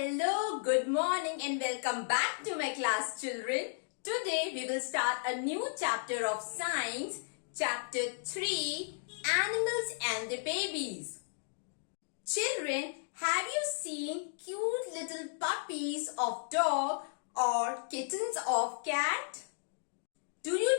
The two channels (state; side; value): silent; right; digital silence